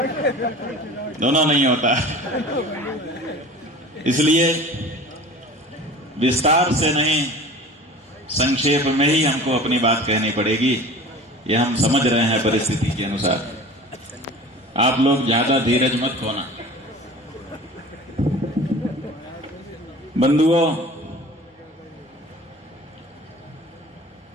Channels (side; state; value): both; normal; correlation 0.40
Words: दोनों नहीं होता। इसलिए विस्तार से नहीं, संक्षेप में ही हमको अपनी बात कहनी पड़ेगी। ये हम समझ रहे हैं परिस्थिति के अनुसार। आप लोग ज्यादा धीरज मत खोना। बंधुओं,